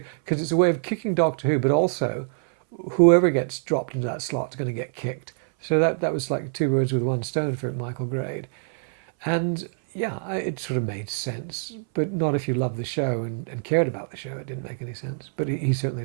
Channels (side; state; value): left; silent; 61 dB below the other